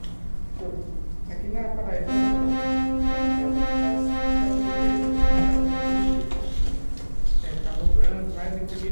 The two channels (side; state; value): both; inverted; correlation -1.00